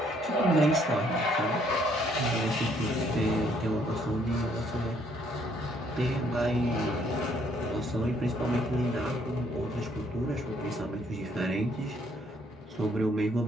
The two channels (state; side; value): normal; both; correlation 0.66